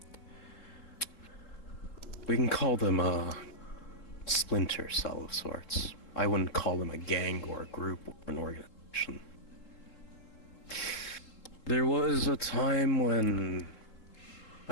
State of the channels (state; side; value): late; right; 3.7 ms